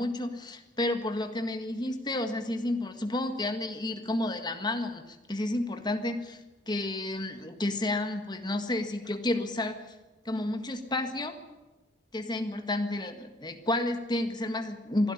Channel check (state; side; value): normal; both; correlation 0.63